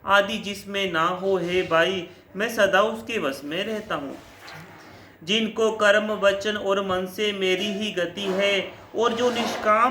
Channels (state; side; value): identical; both; correlation 1.00